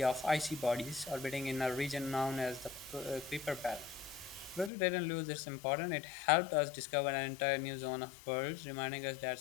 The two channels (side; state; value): right; drops out; at 4.7 s